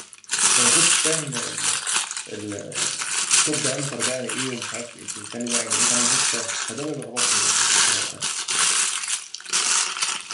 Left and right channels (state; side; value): identical; both; correlation 1.00